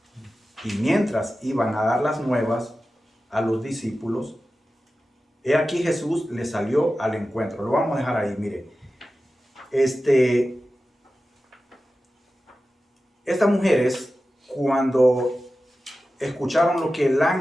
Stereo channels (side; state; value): both; normal; correlation 0.94